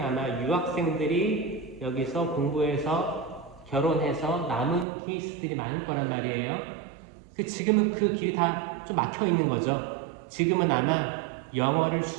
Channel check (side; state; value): left; drops out; at 4.9 s